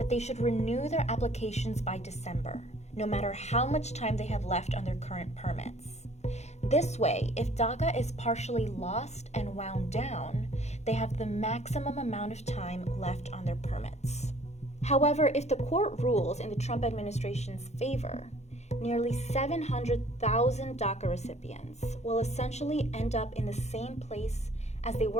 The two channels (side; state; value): right; late; 0.32 ms